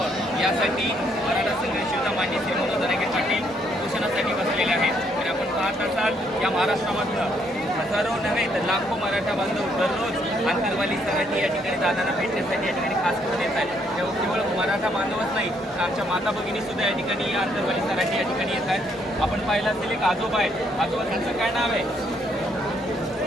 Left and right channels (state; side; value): normal; both; correlation 0.71